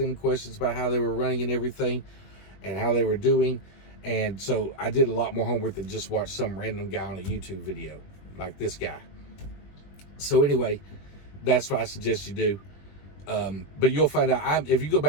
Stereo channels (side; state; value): right; late; 21 ms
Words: questions about how they were running and everything and how they were doing. And so I did a lot more homework than just watch some random guy on a YouTube video like this guy. So anyway, that's what I suggest you do. But you'll find out, if you go